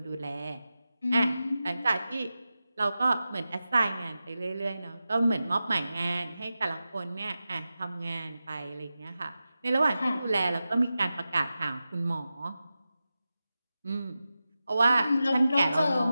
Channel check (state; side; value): inverted; both; correlation -0.93